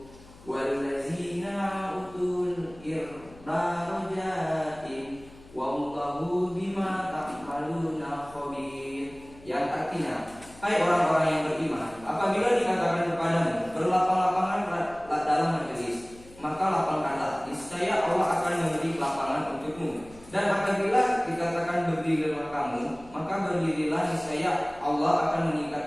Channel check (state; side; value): noise; left; hum, 22 dB below the sound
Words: walladzina utul darajatin wallahu bima ta'maluna khabir. Yang artinya, hai orang-orang yang beriman, apabila dikatakan kepadamu berlapang-lapangan dalam majelis, maka lapangkanlah, niscaya Allah akan memberi lapangan untukmu. Dan apabila dikatakan berdirilah kamu, maka berdirilah, niscaya Allah akan